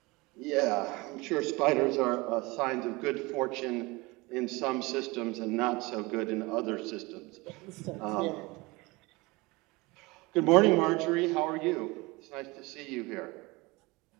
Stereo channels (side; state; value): left; quieter; 23.8 dB